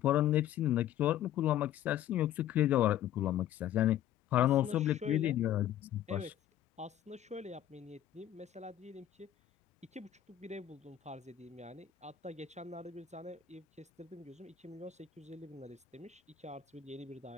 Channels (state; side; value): quieter; right; 11.6 dB